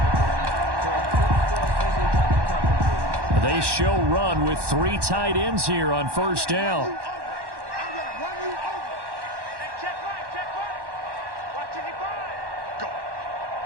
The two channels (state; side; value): late; left; 1.1 ms